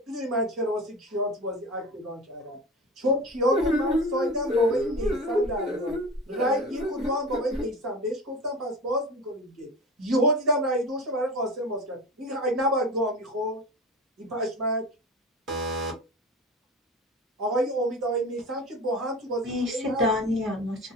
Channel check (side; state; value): both; normal; correlation 0.31